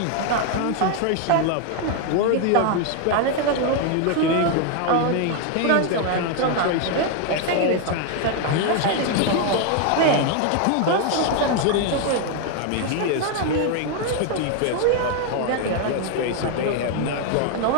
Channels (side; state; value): both; different; correlation 0.01